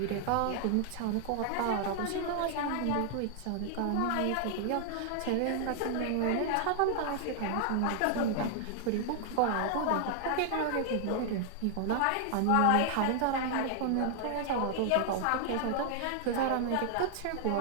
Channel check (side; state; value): both; different; correlation 0.00